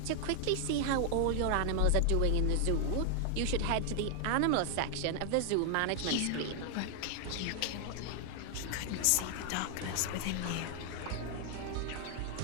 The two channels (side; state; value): both; different; correlation 0.00